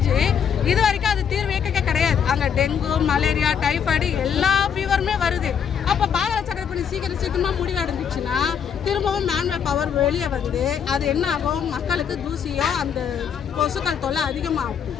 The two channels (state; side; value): quieter; right; 7.7 dB